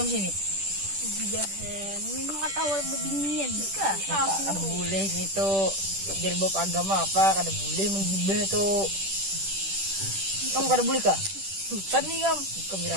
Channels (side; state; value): left; late; 10 ms